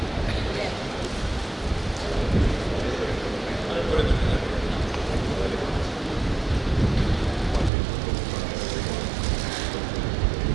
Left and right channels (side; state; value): left; drops out; at 7.7 s